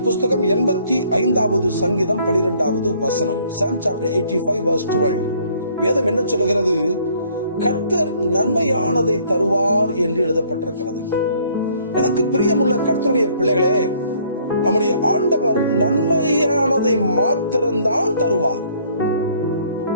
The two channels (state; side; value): inverted; both; correlation -0.61